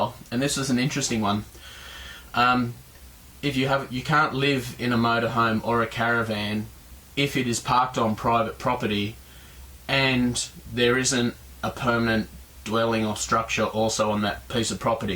And this is an interesting one. You can't live in a motorhome or a caravan if it is parked on private property and there isn't a permanent dwelling or structure also on that piece of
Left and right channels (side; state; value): both; identical; correlation 1.00